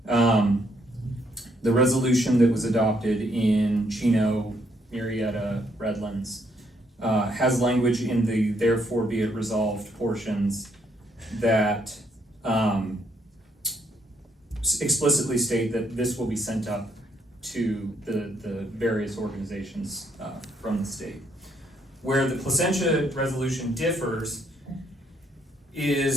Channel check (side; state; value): both; normal; correlation 0.71